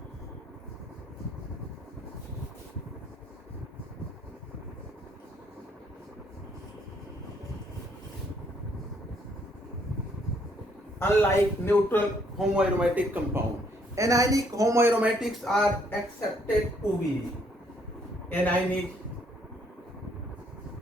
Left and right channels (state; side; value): normal; both; correlation 0.68